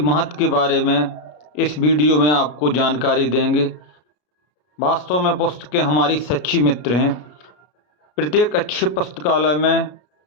के बारे में इस वीडियो में आपको जानकारी देंगे। वास्तव में पुस्तकें हमारी सच्ची मित्र हैं। प्रत्येक अच्छे पुस्तकालय में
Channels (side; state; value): right; late; 33 ms